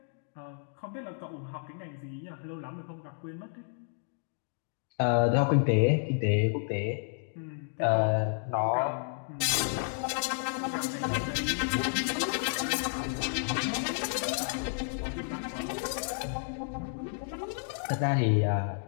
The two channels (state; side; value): silent; right; digital silence